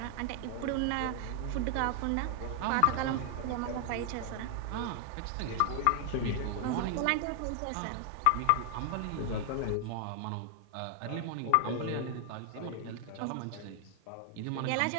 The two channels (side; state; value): both; different; correlation 0.00